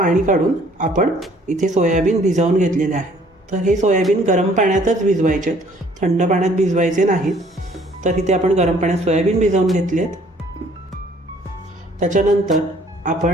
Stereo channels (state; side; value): normal; both; correlation 0.59